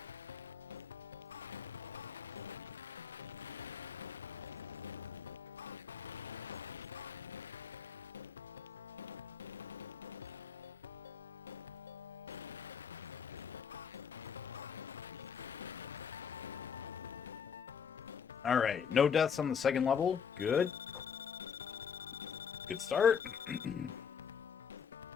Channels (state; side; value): quieter; right; 7.1 dB